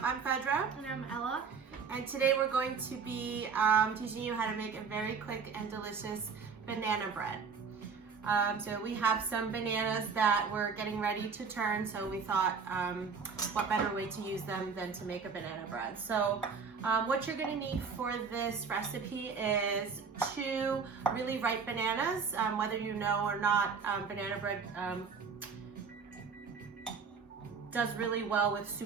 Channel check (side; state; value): left; quieter; 5.6 dB